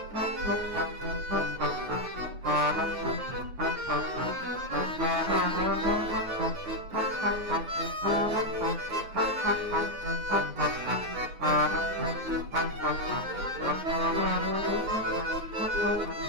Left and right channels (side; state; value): left; late; 9.4 ms